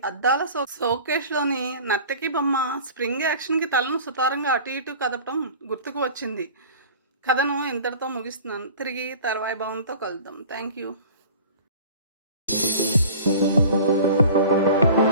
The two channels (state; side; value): inverted; both; correlation -0.42